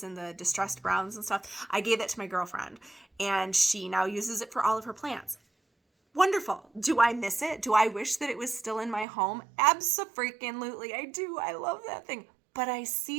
and the distressed browns and stuff. I gave it to my girlfriend, and she now uses it for all of her plants. Wonderful. Do I miss it? Do I wish that it was still in my home? Abso-freaking-lutely. I do. I love that thing. But I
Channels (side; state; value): left; drops out; at 9.1 s